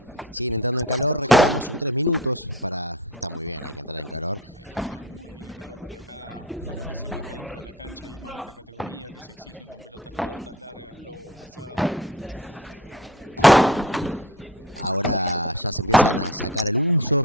Siguen entrando en calor, recordamos son 3 minutos para... Está muy bien, hay que entrar en calor. Hay que entrar muy bien en calor porque acá con lo que se corre dentro de la cancha y más esta categoría que se exigen con pelotas cortas, largas, lobo pasado. Ahora ya se empiezan a sacar el uso,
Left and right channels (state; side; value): normal; both; correlation 0.35